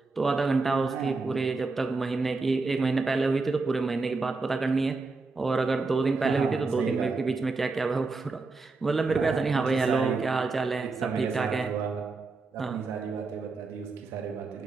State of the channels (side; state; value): left; quieter; 3.9 dB